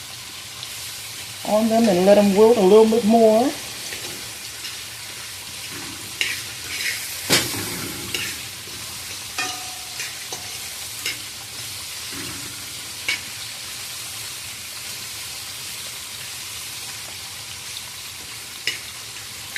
on them and let them wilt a little bit more.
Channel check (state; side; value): identical; both; correlation 1.00